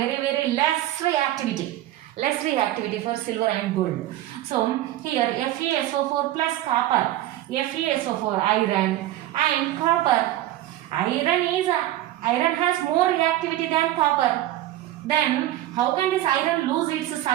less reactivity. Less reactivity for silver and gold. So here FeSO4 plus copper, FeSO4 iron and copper. Iron has more reactivity than copper. Then how can this iron lose its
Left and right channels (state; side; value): quieter; left; 14.3 dB